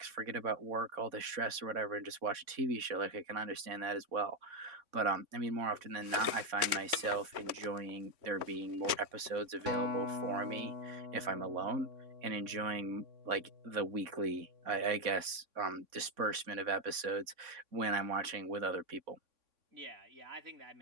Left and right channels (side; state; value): left; late; 3.5 ms